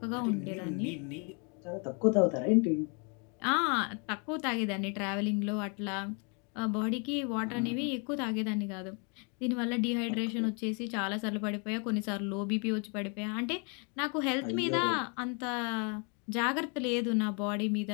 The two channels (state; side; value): quieter; right; 36.4 dB